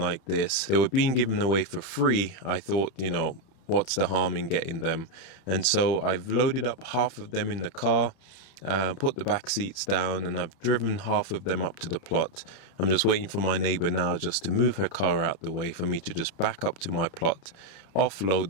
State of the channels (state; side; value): late; right; 31 ms